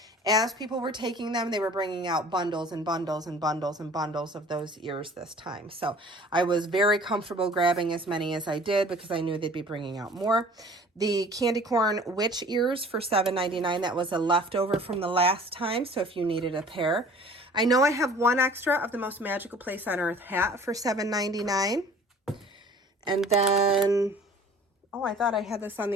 As people were taking them, they were bringing out bundles and bundles and bundles and bundles of those ears this time. So I was very comfortable grabbing as many as I did because I knew they'd be bringing out more. The candy corn witch ears for $7.99. That was a leftover from the last time, so if you needed a pair. I know I have one extra of the Most Magical Place on Earth hat for $7.99. And then... oh, I thought I had this on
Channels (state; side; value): normal; both; correlation 0.48